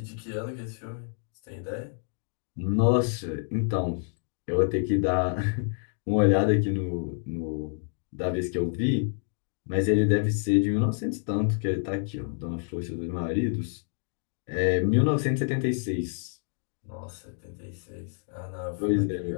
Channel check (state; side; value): silent; right; 59 dB below the other